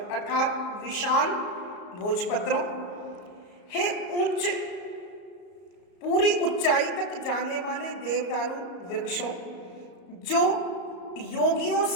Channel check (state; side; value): late; right; 34 ms